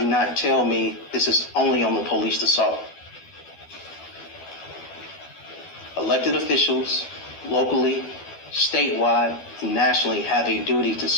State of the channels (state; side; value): late; right; 12 ms